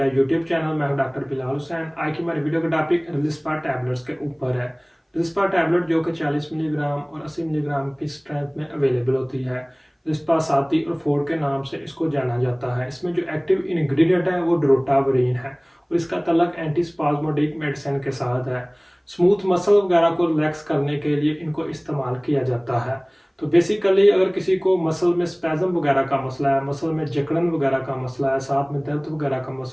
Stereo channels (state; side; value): identical; both; correlation 1.00